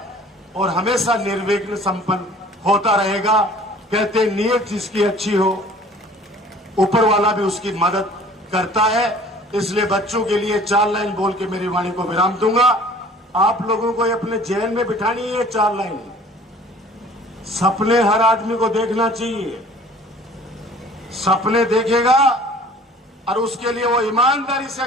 और हमेशा निर्विघ्न संपन्न होता रहेगा। कहते हैं नीयत जिसकी अच्छी हो ऊपर वाला भी उसकी मदद करता है। इसलिए बच्चों के लिए 4 लाइन बोल के मेरी वाणी को विराम दूंगा। आप लोगों को अपने जेल में बिठानी है 4 लाइन। सपने हर आदमी को देखना चाहिए। सपने देखेगा और उसके लिए वो ईमानदारी से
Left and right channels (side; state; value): both; normal; correlation 0.50